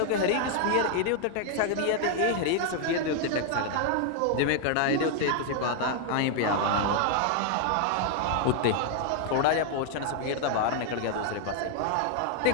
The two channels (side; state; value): both; different; correlation 0.00